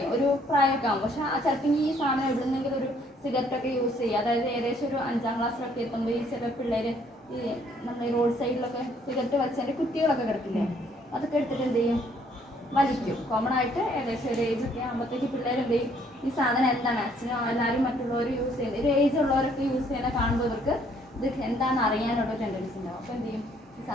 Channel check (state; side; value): normal; both; correlation 0.64